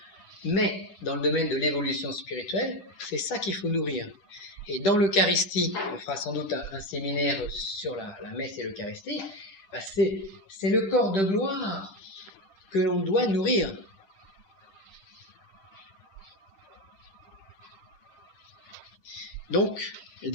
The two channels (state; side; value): late; right; 10 ms